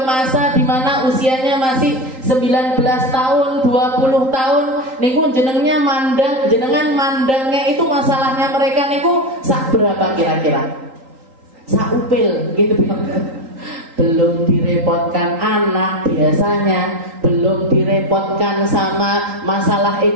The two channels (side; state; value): left; late; 3.8 ms